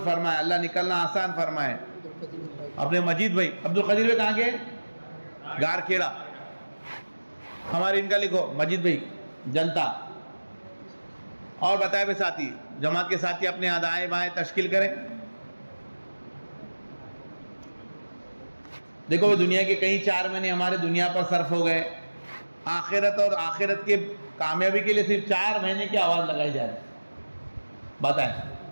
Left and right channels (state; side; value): inverted; both; correlation -1.00